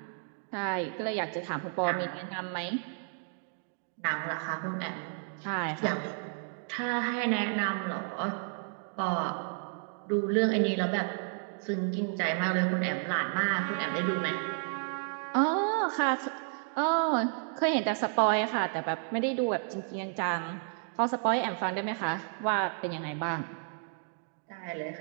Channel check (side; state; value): left; silent; 57 dB below the other